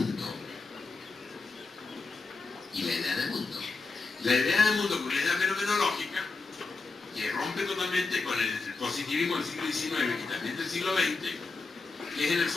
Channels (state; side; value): quieter; right; 3.9 dB